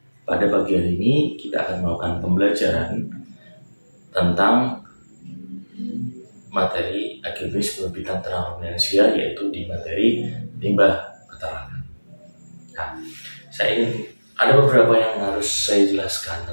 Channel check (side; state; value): both; inverted; correlation -1.00